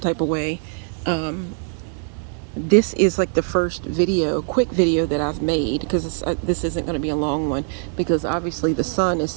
of way, this is like the first quick video that I've made, because this isn't going to be a long one, because obviously the sun is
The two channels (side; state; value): left; silent; 64 dB below the other